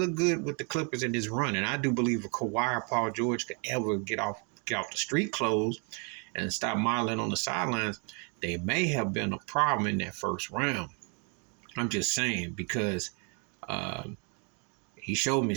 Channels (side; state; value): left; quieter; 36.5 dB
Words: good with the Clippers in his run. And I do believe if Kawhi or Paul George could ever get off the street clothes and stop modeling on the sidelines, they may have been a problem in that first round. I'm just saying because uh, he showed me